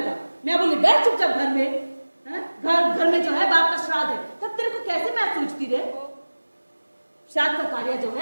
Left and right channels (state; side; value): inverted; both; correlation -1.00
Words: मैं बोली बैठ चुपचाप घर में। घर में जो है बाप का श्राद्ध है, तब तेरे को कैसे मैच सूझती रे? श्राद्ध का कार्य जो